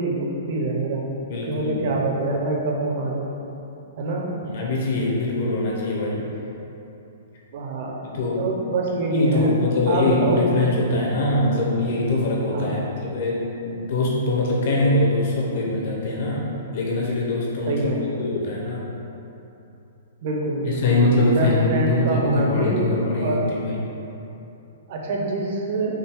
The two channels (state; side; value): inverted; both; correlation -0.34